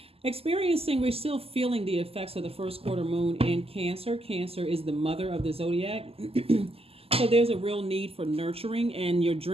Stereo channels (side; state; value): left; late; 0.28 ms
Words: we're still feeling the effects of the first quarter moon in Cancer. Cancer is the mother of the Zodiac. So there's a real need for nurturing, and your